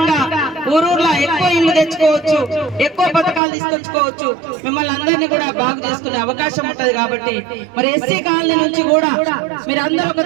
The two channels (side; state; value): left; drops out; at 3.4 s